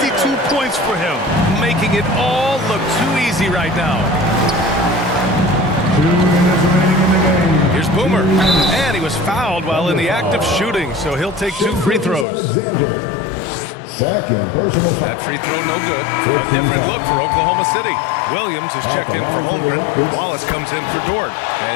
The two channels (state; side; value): drops out; right; at 12.2 s